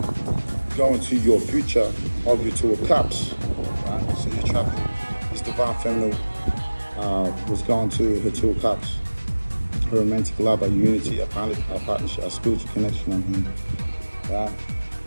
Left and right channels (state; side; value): inverted; both; correlation -1.00